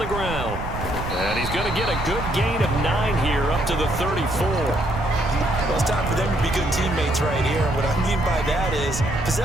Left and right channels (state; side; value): noise; right; rumble, 7 dB below the sound